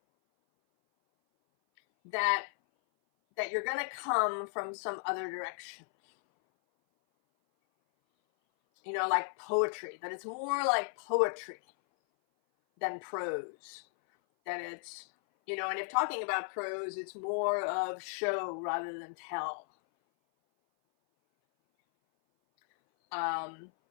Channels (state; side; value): silent; right; 55 dB below the other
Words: That you're going to come from some other direction. Like poetry, that it's more like poetry than prose. That it's, and if talking about prose, it's more of show rather than tell. An